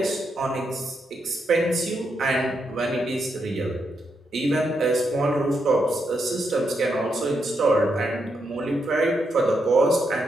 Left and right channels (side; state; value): both; normal; correlation 0.81